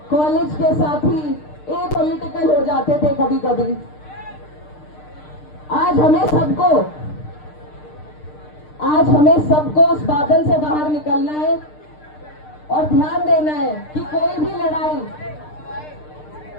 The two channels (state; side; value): late; right; 6.6 ms